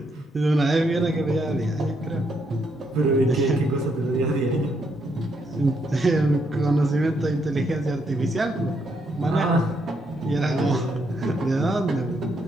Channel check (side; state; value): both; normal; correlation 0.76